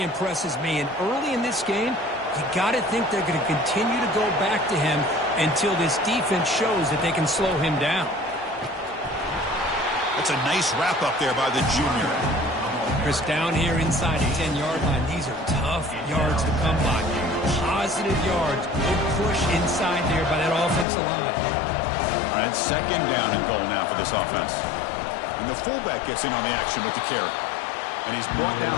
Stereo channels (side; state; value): right; drops out; at 20.9 s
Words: impresses me. And early in this game, you got to think they're going to continue to go back to him until this defense shows that they can slow him down. That's a nice wrap up there by the junior. Chris, down here inside the 10-yard line, these are tough yards to come by. Positive yards. Good push inside there by that offensive line. All right, second down and goal now for this offense. And the fullback gets in on the action with the carry. And he's brought